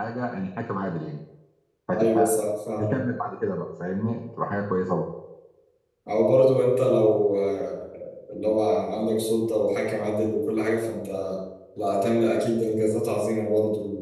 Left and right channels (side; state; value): both; identical; correlation 1.00